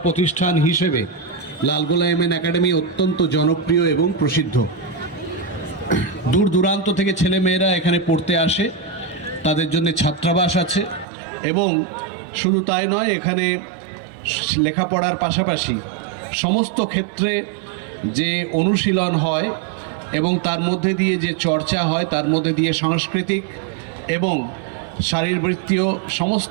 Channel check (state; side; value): drops out; left; at 11.1 s